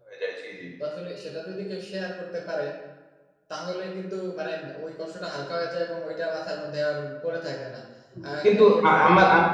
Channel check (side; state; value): both; identical; correlation 1.00